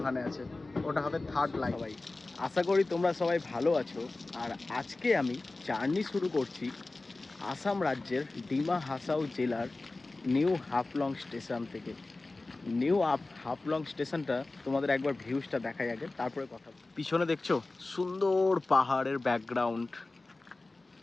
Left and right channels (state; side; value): quieter; right; 3.2 dB